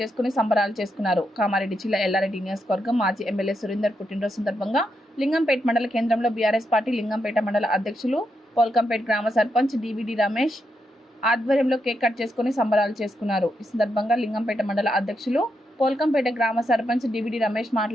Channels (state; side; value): normal; both; correlation 0.82